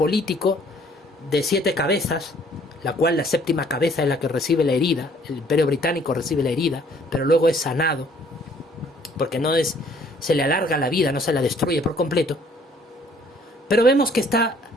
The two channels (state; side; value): normal; both; correlation 0.60